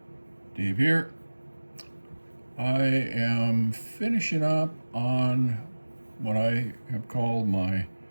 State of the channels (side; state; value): both; inverted; correlation -1.00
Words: Dave here. I am finishing up on what I have called my